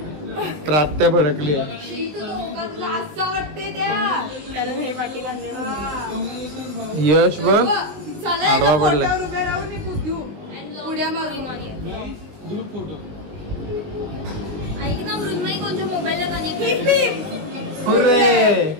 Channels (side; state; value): left; late; 20 ms